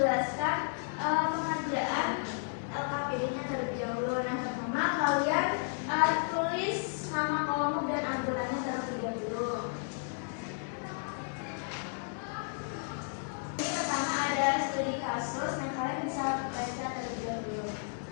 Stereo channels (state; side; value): silent; right; digital silence